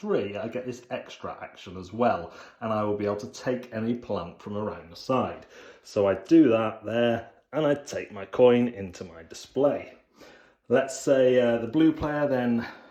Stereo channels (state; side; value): identical; both; correlation 1.00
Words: I get this extra action as well, and I will be able to take any plant from around the side. So I do that there, and I take my coin into my display. Let's say the blue player then